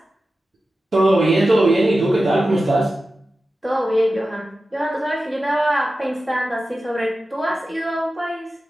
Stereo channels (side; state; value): both; normal; correlation 0.93